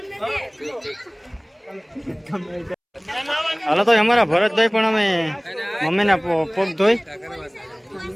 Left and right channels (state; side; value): identical; both; correlation 1.00